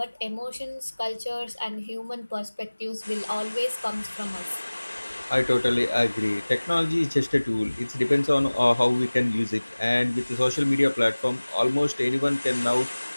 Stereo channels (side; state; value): both; inverted; correlation -1.00